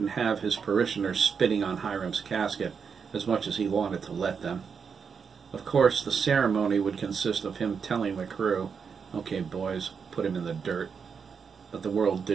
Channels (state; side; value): quieter; left; 6.2 dB